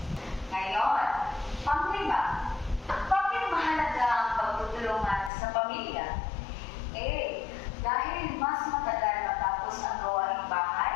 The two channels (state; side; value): drops out; right; at 5.3 s